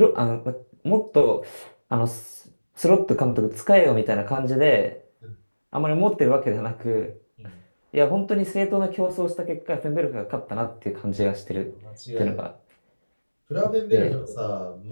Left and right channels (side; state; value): both; inverted; correlation -1.00